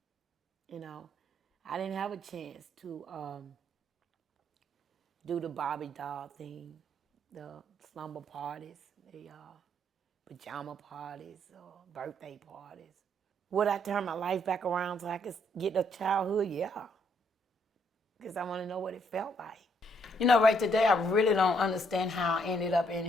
You know, I didn't have a chance to do the Barbie doll thing, the slumber parties, the pajama parties, birthday parties. Would I turn my life back around so I could get a childhood? Yeah, because I want to know what it felt like. You know, right today, I really don't understand how I ended up in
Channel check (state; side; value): normal; both; correlation 0.70